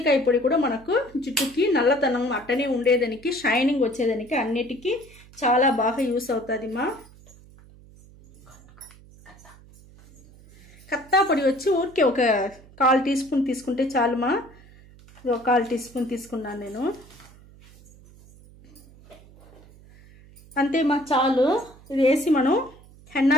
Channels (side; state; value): right; noise; hum, 24 dB below the sound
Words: పొడి కూడా మనకు జుట్టుకి నల్లతనం అట్టనే ఉండేదానికి, షైనింగ్ వచ్చేదానికి, అన్నిటికీ చాలా బాగా యూస్ అవుతుంది మా. కత్తా పొడి వచ్చి ఊరికే ఒక 1/4 టీ స్పూన్ తీసుకుంటే చాలు మా. 1/4 టీ స్పూన్ తీసుకున్నాను నేను, అంతే మా, చాలు. ఇది వేసి మనం హెన్నా